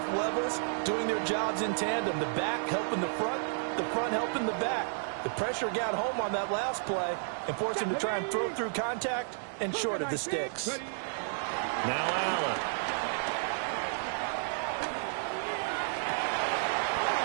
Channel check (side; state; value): left; silent; digital silence